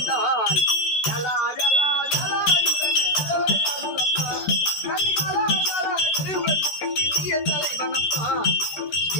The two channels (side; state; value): right; late; 13 ms